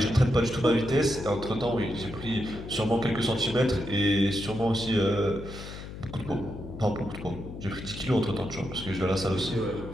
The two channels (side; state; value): left; noise; hum, 11 dB below the sound